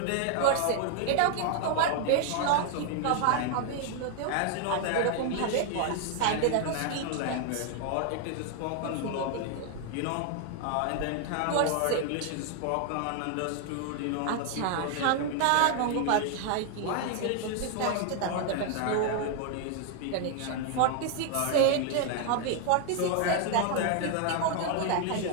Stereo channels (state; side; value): different; both; correlation 0.00